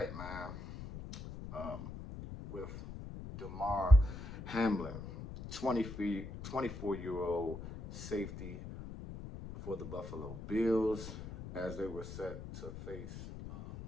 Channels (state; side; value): noise; left; rumble, 10 dB below the sound